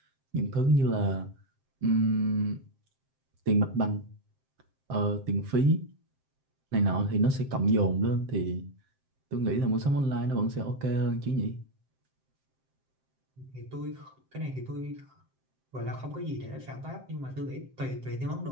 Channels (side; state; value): left; late; 7.6 ms